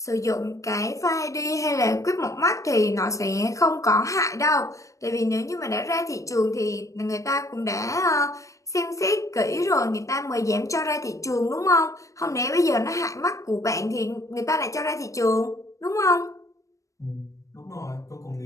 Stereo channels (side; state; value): right; late; 0.15 ms